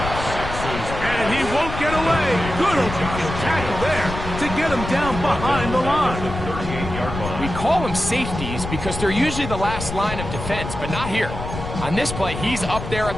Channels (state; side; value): noise; left; rumble, 7 dB below the sound